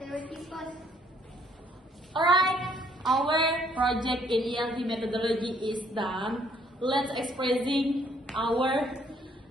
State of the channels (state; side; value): normal; both; correlation 0.65